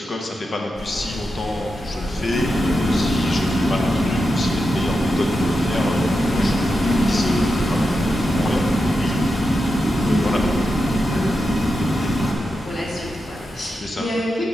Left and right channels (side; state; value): both; normal; correlation 0.88